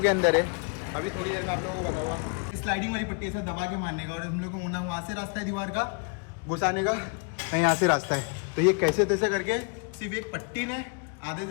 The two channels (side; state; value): right; quieter; 37.6 dB